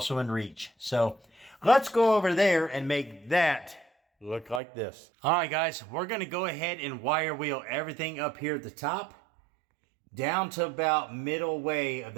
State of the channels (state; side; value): drops out; left; at 4.6 s